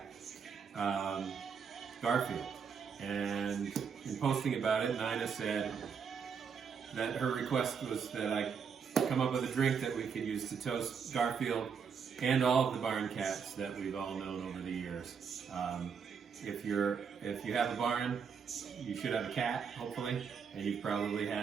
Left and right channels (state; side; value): quieter; left; 6.4 dB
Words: Garfield. And in posting about it, Nina said that her request was that I come up with a drink that we could use to toast Garfield and all of the barn cats that we've all known over the years. If you have a barn, you should have a cat, hopefully, and you've probably